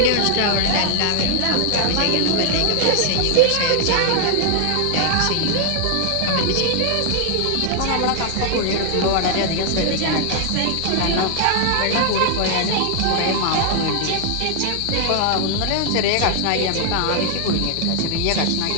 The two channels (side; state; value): both; different; correlation 0.00